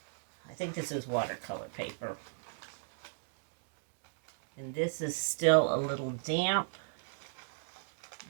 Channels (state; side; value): silent; left; digital silence